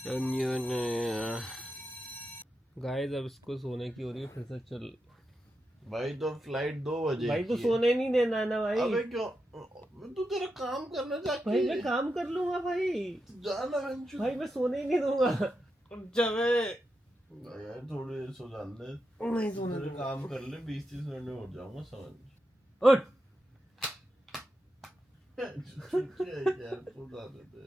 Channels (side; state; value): both; normal; correlation 0.87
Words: गाइस अब इसको सोने की हो रही है, फिर से चल। भाई तो फ्लाइट 2 बजे भाई तो की सोने नहीं देना है ना भाई। अबे क्यों, तू तेरा काम करना चाहती भाई है। मैं काम कर लूंगा भाई। जाना भाई मैं सोने ही नहीं दूंगा। जबे यार थोड़ी देर सो जाने दे। नहीं सोने तेरे दूंगा। काम कर ले, 20-30 मिनट में उठ जाऊंगा, समझ। उठ। यार तू ना दे दे